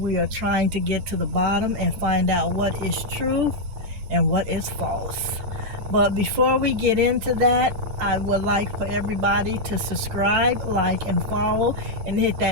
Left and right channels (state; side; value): late; left; 9.1 ms